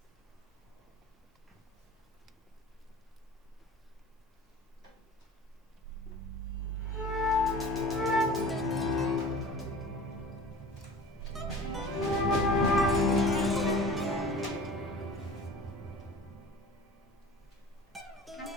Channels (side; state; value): both; normal; correlation 0.40